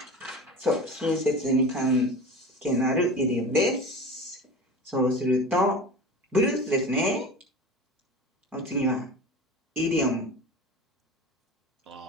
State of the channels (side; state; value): both; normal; correlation 0.33